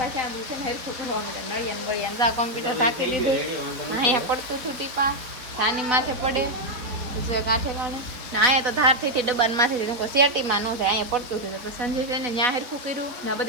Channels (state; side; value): late; left; 4.1 ms